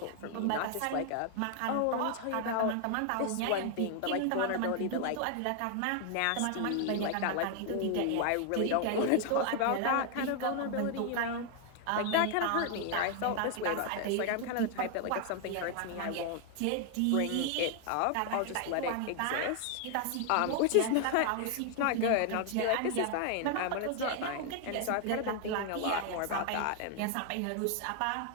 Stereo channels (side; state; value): both; different; correlation 0.00